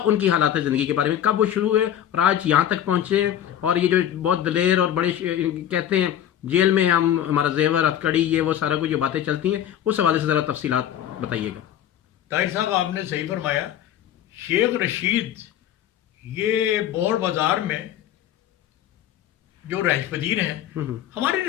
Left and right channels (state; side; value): quieter; right; 10.8 dB